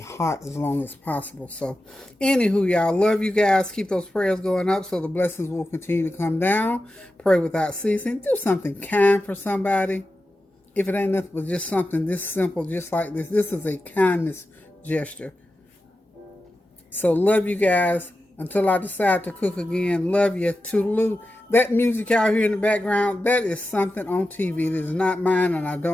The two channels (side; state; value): both; normal; correlation 0.92